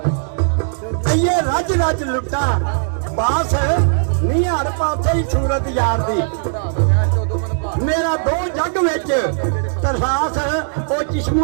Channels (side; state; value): left; silent; digital silence